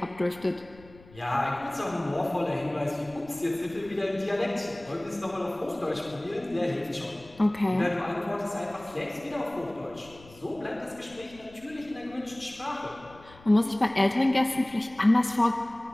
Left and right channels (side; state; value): left; noise; rumble, 23 dB below the sound